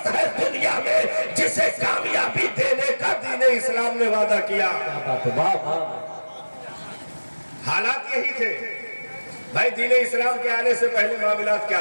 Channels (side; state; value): both; inverted; correlation -1.00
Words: ہے دنیا میں، جسے کامیابی دینے کا دین اسلام نے وعدہ کیا۔ حالات یہی تھے بھائی، دین اسلام کے آنے سے پہلے معاملات کیا